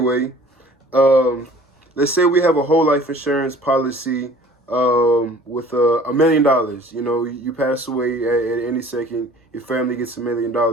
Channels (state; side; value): normal; both; correlation 0.49